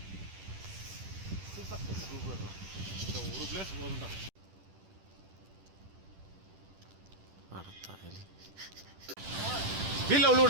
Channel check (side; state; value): left; late; 10 ms